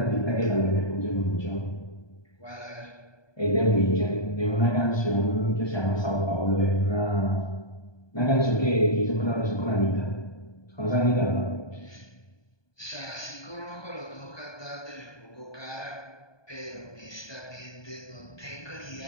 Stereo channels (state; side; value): late; right; 1.2 ms